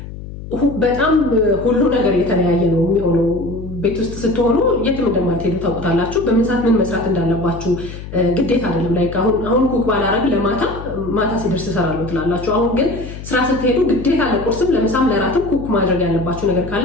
በጣም ሁሉ ነገር የተለያየ ነው የሚሆነው። ቤት ውስጥ ስትሆኑ የትም እንደማትሄዱ ታውቁታላችሁ። በምን ሰዓት ምን መስራት እንዳለባችሁ ግዴታ አይደለም። ላይክ አሁን ኩክ ባላረግ ማታ ሲደርስ እሰራለሁ ትላላችሁ። አሁን ግን ስራ ስትሄዱ ግዴታ ለቁርስም ለምሳም ለራትም ኩክ ማድረግ ያለባችሁ ነገር ካለ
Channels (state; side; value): noise; left; hum, 12 dB below the sound